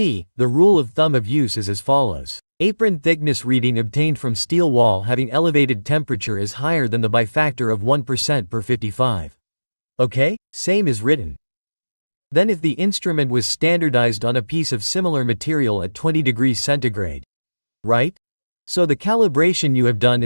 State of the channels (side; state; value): both; inverted; correlation -1.00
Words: the rule of thumb of use is as follows. Apron thickness reading obtained from steel wall having elevated temperature is higher than the by factor of 1% per 55. Okay? Same is written. Then if the instrument was standardized on a piece of similar material at 20 degrees centigrade. Right? So the calibration you have done